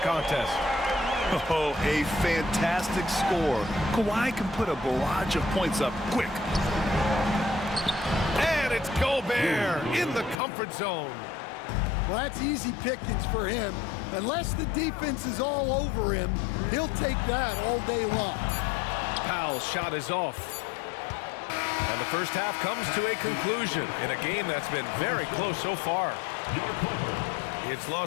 Oh, a fantastic score. Kawhi can put a barrage of points up quick. And it's Gobert in the comfort zone. Well, that's easy pickings for him. Unless the defense is all over him, he'll take that all day long. Powell's shot is off. And the first half comes to a conclusion in a game that's been very close so far. It's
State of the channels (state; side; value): drops out; right; at 10.4 s